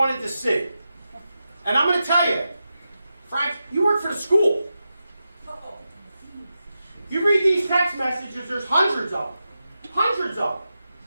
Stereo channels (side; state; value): both; inverted; correlation -0.90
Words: to see. And I'm going to tell you, Frank, you work for the school. You read these text messages, there's hundreds of them. Hundreds of them.